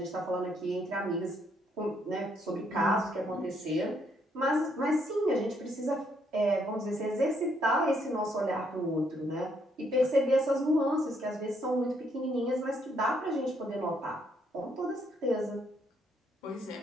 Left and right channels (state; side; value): normal; both; correlation 0.72